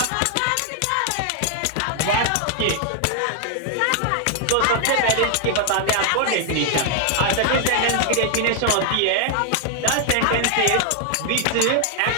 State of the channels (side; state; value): both; different; correlation 0.00